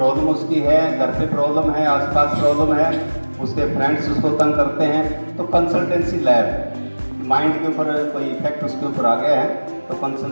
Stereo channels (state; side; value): inverted; both; correlation -1.00